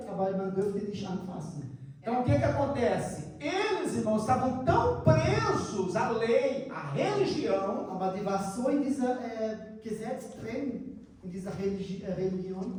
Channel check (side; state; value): both; identical; correlation 1.00